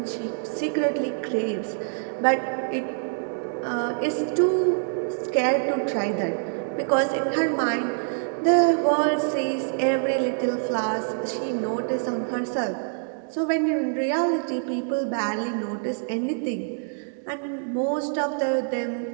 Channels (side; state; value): left; silent; 61 dB below the other